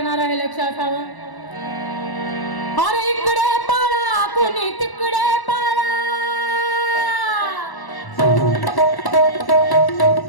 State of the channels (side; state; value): right; late; 1.1 ms